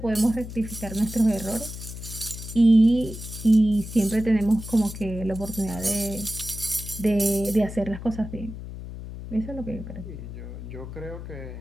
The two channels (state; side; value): noise; left; hum, 10 dB below the sound